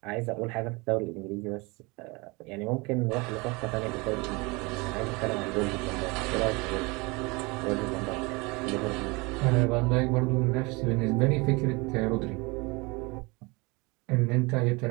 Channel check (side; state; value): left; quieter; 26.5 dB